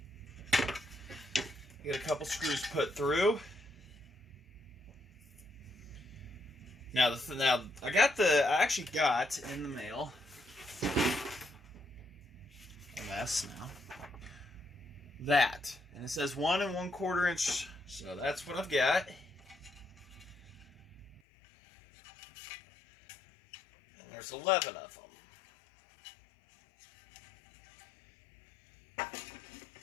Get a couple screws put through. Now I actually got in the mail a mess now. That, and it says 1 1/4 inch, so that's what I've got. And there's 11 of them.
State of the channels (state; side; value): drops out; right; at 21.2 s